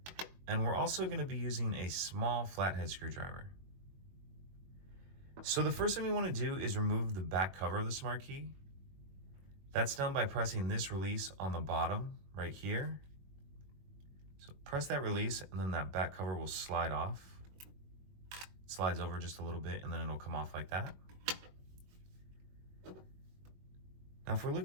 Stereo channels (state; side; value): late; left; 21 ms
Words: and we're also going to be using a small flathead screwdriver. So the first thing we want to do is remove the back cover of the Smart Key. That's done by pressing this release on the bottom right here. So press that release and then that back cover will slide off. It slides over just a little bit and then it'll come off like that. Now if we're